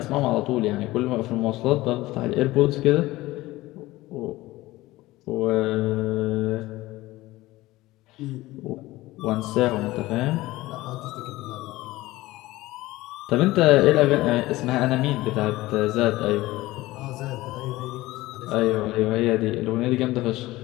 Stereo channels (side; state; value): right; quieter; 18.2 dB